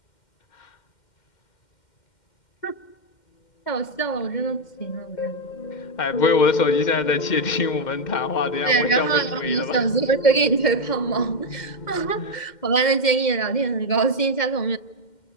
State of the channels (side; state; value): right; late; 2.1 ms